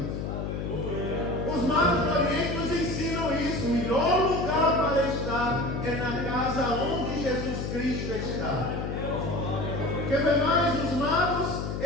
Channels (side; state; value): left; noise; hum, 3 dB below the sound